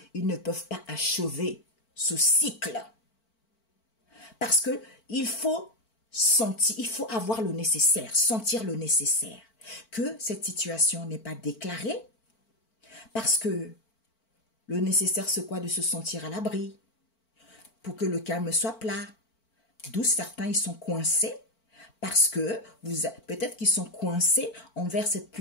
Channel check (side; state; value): right; late; 4.5 ms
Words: ils ne peuvent pas achever ce cycle. Parce que il faut sentir, il faut avoir le nécessaire, sentir le nécessaire. Que cette situation n'est pas déclarée. Parce que le nécessaire, c'est quoi? De se sentir à l'abri. Pour que le calme soit plat. D'où certains, ils sont coincés. Parce que peut-être qu'ils sont coincés envers cette